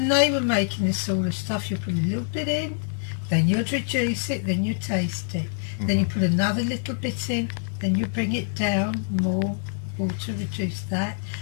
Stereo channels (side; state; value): right; silent; 61 dB below the other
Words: they were making this sort of stuff, you put a little bit in, then you'd reduce it, then you taste it. Then you put another little bit in, then you bring it down, more water, reduce that.